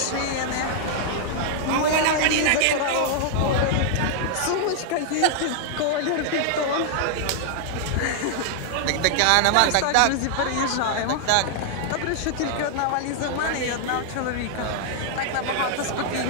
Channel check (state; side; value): different; both; correlation 0.00